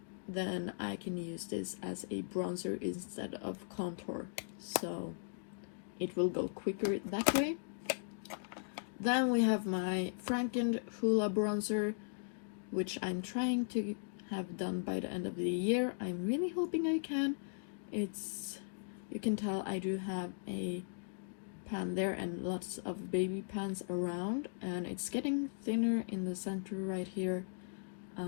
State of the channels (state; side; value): silent; right; digital silence